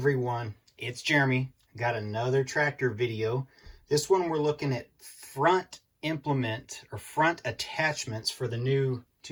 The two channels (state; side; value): identical; both; correlation 1.00